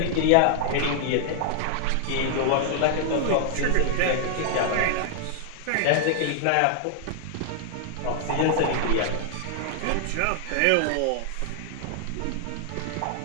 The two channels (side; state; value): both; different; correlation -0.01